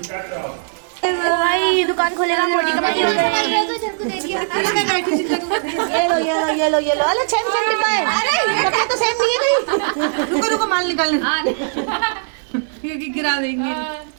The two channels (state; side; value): silent; left; digital silence